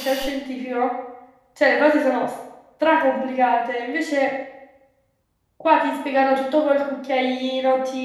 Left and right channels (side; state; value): both; identical; correlation 1.00